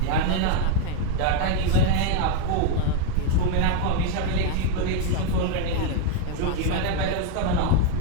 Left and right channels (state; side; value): different; both; correlation 0.01